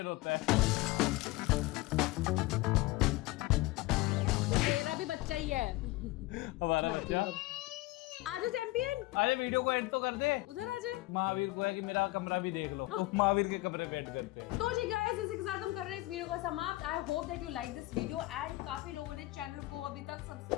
होता है। मेरा भी बच्चा ही है हमारा बच्चा। आजा चैंपियन, अरे वीडियो को एंड तो कर दे। उधर आजा। महावीर को है कि मेरा कमरा भी देख लो। महावीर के कमरे पे करते हैं। तो जी गाइस इसी के साथ हम कर रहे हैं इस वीडियो को समाप्त। I hope that you like this video and काफी लोगों ने चैनल को अभी तक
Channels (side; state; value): right; quieter; 20.0 dB